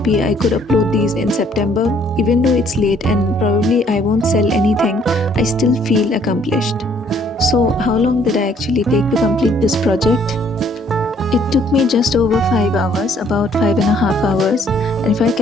I could upload these in September. Even though it's late and probably I won't sell anything, I still feel accomplished. So, how long did I actually take to complete this project? It took me just over 5 hours, about 5.5 hours, and if I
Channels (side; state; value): both; normal; correlation 0.63